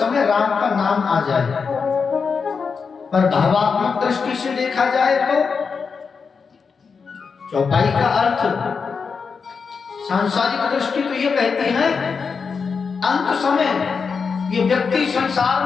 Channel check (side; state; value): right; quieter; 5.5 dB